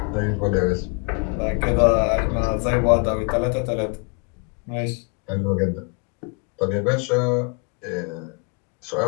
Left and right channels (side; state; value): right; quieter; 35.0 dB